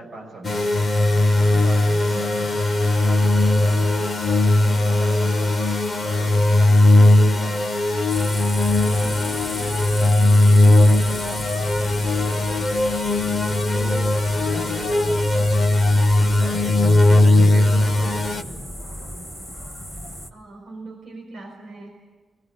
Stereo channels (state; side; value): normal; both; correlation 0.91